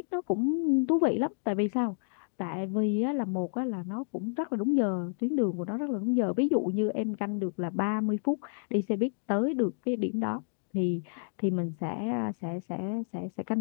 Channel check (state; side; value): silent; right; digital silence